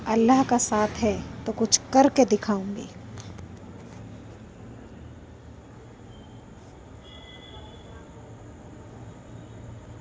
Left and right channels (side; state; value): both; identical; correlation 1.00